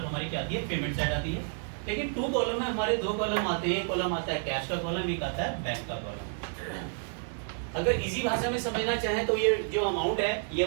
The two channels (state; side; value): silent; left; 58 dB below the other